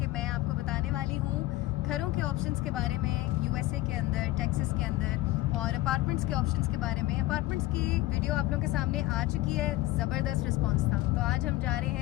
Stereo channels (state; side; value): quieter; right; 17.6 dB